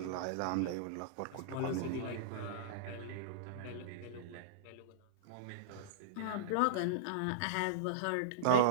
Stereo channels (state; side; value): different; both; correlation -0.03